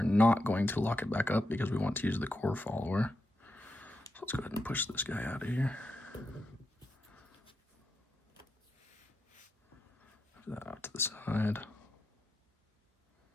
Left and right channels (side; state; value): both; normal; correlation 0.85